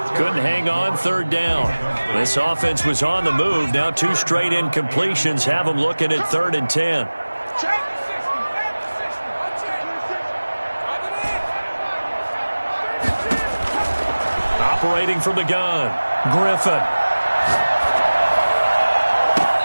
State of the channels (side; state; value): both; inverted; correlation -1.00